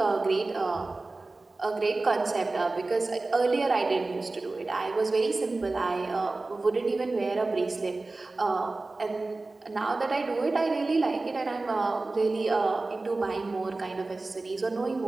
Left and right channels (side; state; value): left; quieter; 3.3 dB